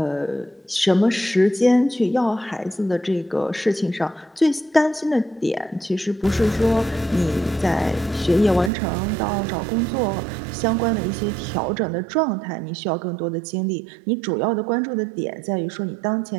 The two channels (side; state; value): left; drops out; at 8.7 s